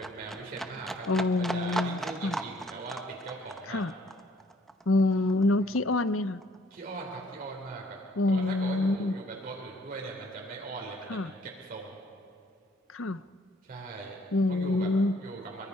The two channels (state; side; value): normal; both; correlation 0.62